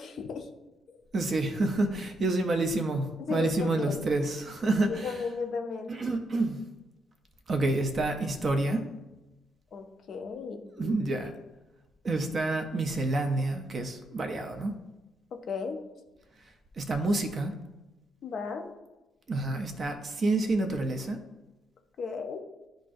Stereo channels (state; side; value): normal; both; correlation 0.80